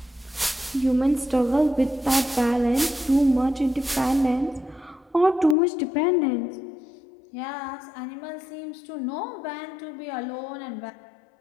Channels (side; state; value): right; drops out; at 5.6 s